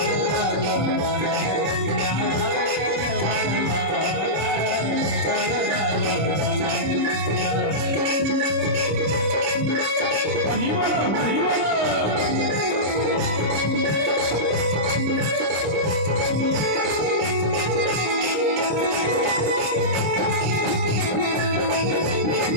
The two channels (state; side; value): late; left; 26 ms